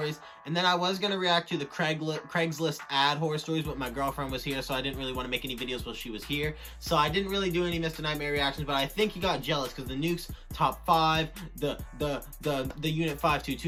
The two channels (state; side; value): identical; both; correlation 1.00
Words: and then I was going to react to the Craigslist ad horror stories, but my girlfriend was here, so I didn't really want to make any videos while she was here. So I didn't really do any Mr. Nightmare reactions, but I think he got jealous because the Nuke's top 5, the Unit